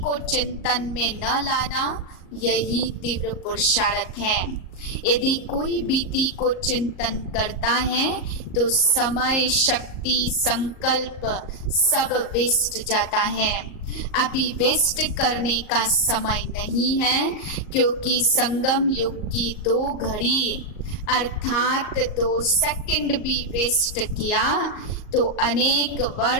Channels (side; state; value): right; late; 38 ms